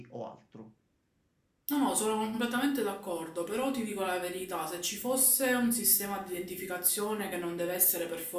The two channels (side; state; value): both; identical; correlation 1.00